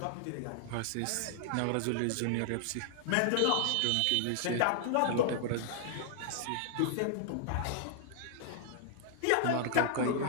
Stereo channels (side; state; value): both; different; correlation -0.01